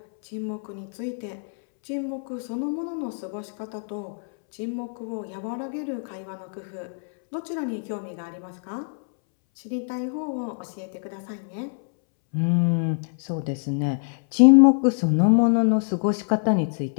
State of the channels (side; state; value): right; silent; 62 dB below the other